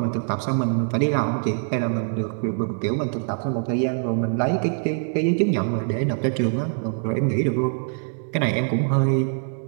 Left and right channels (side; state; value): left; silent; 63 dB below the other